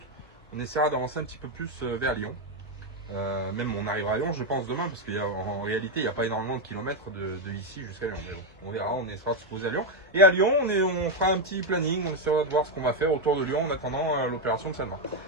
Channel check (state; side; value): normal; both; correlation 0.04